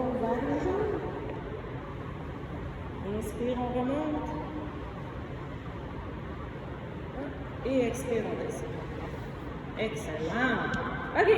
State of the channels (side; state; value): both; identical; correlation 1.00